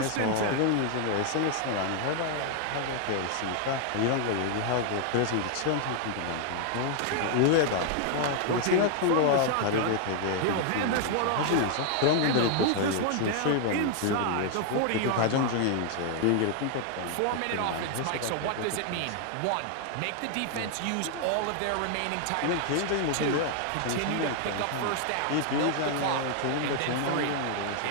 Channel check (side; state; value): both; different; correlation 0.00